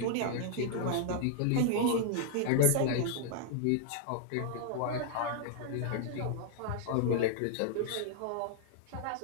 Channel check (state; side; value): different; both; correlation -0.01